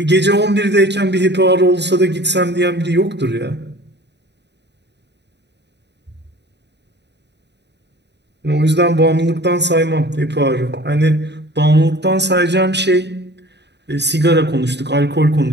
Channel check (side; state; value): left; late; 0.50 ms